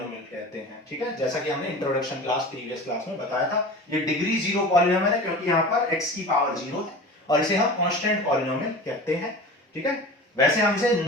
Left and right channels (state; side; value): normal; both; correlation 0.35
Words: कहते हैं। ठीक है, जैसा कि हमने इंट्रोडक्शन क्लास प्रीवियस क्लास में बताया था, ये डिग्री जीरो पॉलिनोमियल है क्योंकि यहां पर x की पावर 0 है और इसे हम कांस्टेंट पॉलिनोमियल कहते हैं। ठीक है, वैसे हम इसे